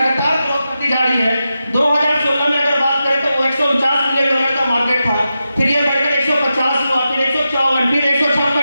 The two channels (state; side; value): inverted; both; correlation -0.90